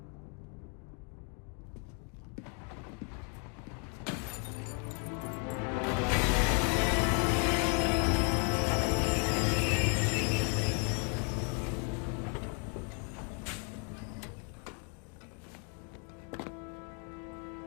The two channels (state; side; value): quieter; right; 39.8 dB